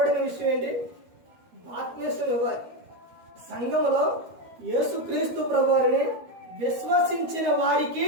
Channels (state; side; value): late; left; 13 ms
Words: విషయం ఏంటి? బాప్తిస్మం ఇవ్వాలి. సంఘంలో యేసు క్రీస్తు ప్రభువారిని విశ్వసించిన వారికి